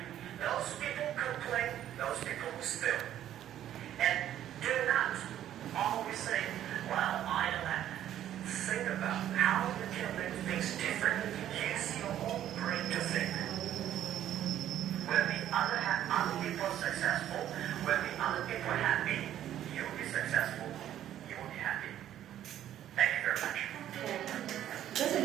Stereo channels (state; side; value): quieter; left; 11.5 dB